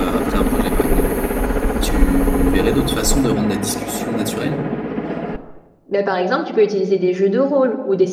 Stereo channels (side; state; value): both; identical; correlation 1.00